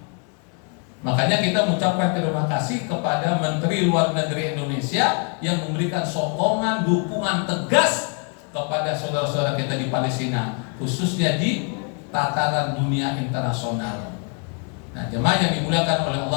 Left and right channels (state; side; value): quieter; right; 38.1 dB